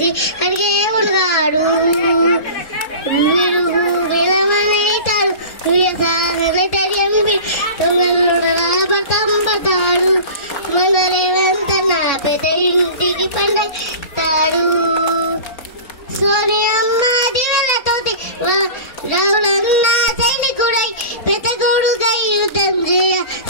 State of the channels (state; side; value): late; right; 3.6 ms